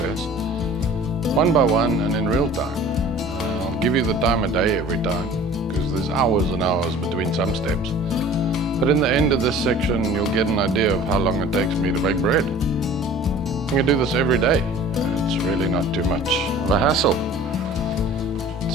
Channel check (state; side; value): normal; both; correlation 0.45